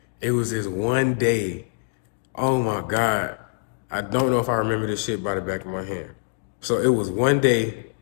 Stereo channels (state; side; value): silent; right; 62 dB below the other